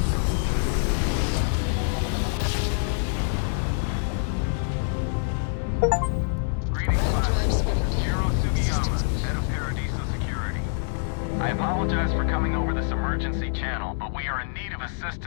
I apologize for coming over this emergency channel, but we are in need of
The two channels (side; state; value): right; silent; digital silence